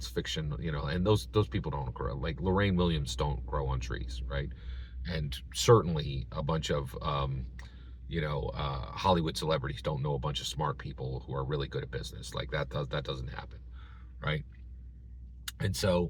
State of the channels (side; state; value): both; identical; correlation 1.00